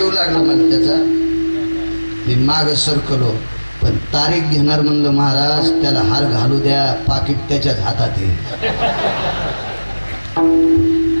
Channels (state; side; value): inverted; both; correlation -1.00